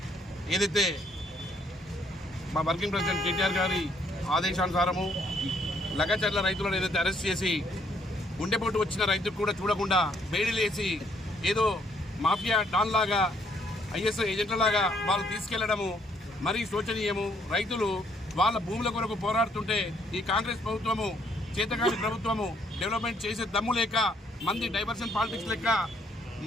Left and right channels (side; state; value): both; normal; correlation 0.68